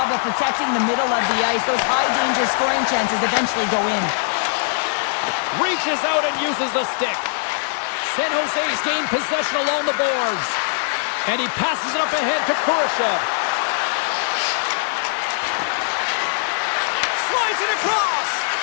of protecting the middle of the ice. Those high-danger scoring chances eventually go in. Reaches out and uses the stick. San Jose's gained possession along the boards. And he passes it up ahead to Kurashev. Slides it across.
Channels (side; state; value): right; silent; digital silence